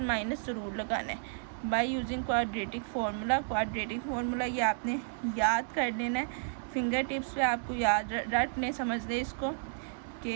माइनस ज़रूर लगाना है bye using quadratic formula. Quadratic formula ये आपने याद कर लेना है, फिंगर टिप्स पे आपको याद रटने समझने इसको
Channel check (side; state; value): left; silent; digital silence